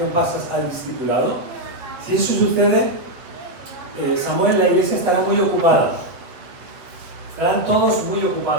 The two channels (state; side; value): late; left; 8.2 ms